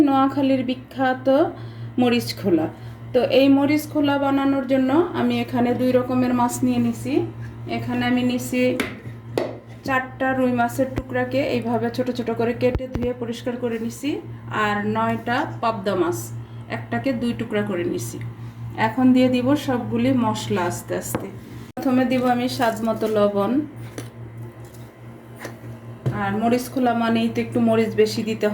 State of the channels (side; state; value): both; identical; correlation 1.00